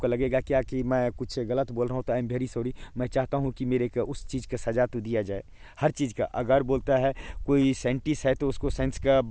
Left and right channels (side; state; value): both; identical; correlation 1.00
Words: लगेगा क्या कि मैं कुछ गलत बोल रहा हूं तो आई एम वेरी सॉरी। मैं चाहता हूं कि मेरे को उस चीज़ का सज़ा तो दिया जाए, हर चीज़ का। अगर बोलता है कोई साइंटिस्ट है तो उसको साइंस का